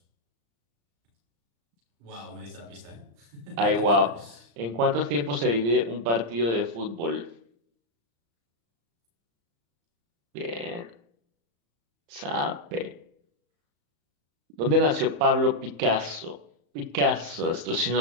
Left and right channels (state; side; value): late; left; 35 ms